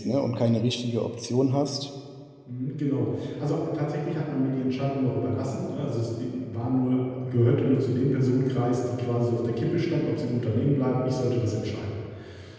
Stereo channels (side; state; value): both; identical; correlation 1.00